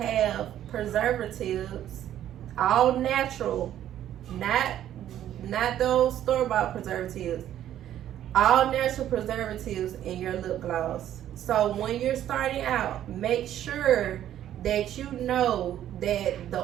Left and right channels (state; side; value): quieter; left; 11.5 dB